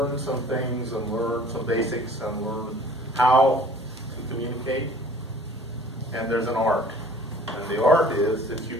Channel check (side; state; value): both; normal; correlation 0.50